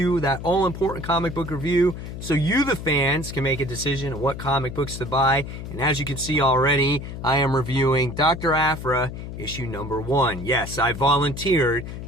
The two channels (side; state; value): left; noise; hum, 9 dB below the sound